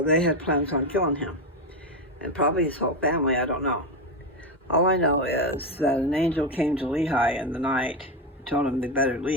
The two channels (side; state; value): both; normal; correlation 0.12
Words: they had plans on killing him. And probably his whole family, I don't know. All I know is that an angel came to Lehi in the night and told him they better